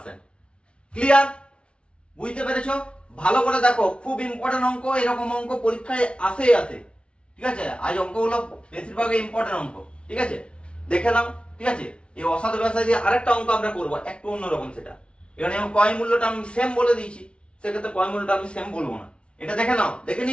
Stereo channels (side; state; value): right; late; 0.058 ms